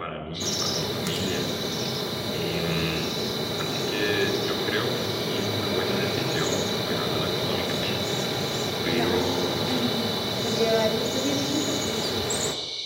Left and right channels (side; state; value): both; identical; correlation 1.00